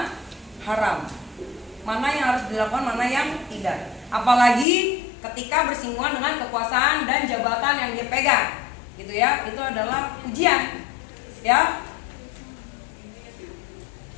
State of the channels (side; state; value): right; drops out; at 4.7 s